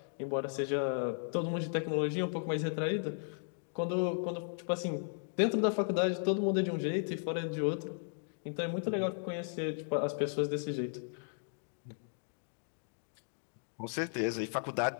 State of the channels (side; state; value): right; silent; digital silence